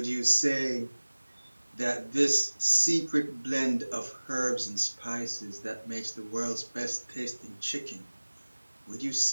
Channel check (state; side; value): inverted; both; correlation -1.00